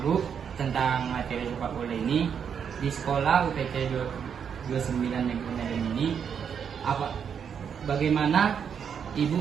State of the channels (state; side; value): quieter; left; 7.4 dB